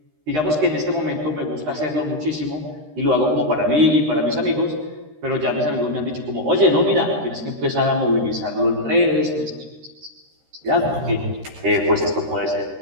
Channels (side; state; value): left; late; 13 ms